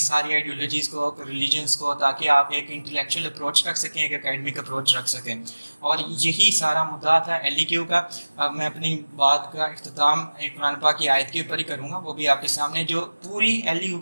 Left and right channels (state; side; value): inverted; both; correlation -1.00